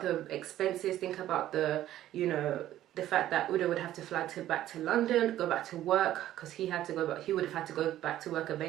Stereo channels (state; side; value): quieter; left; 13.1 dB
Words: the expenses, think about the, you know, the fact that Udo would have to fly back to London, go back to work, because he had to go back. He would have had to go back to work